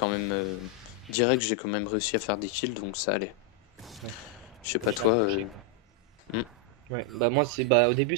même. Direct, j'ai quand même réussi à faire des kills, donc ça allait. Ouais. Je sais Moi, pas je l'ai toi. accroché. Hmm. Ouais, bah moi c'est bah au début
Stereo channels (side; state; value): both; normal; correlation 0.00